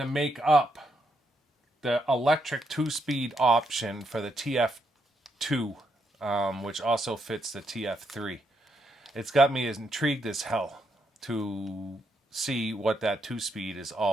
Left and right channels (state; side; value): normal; both; correlation 0.79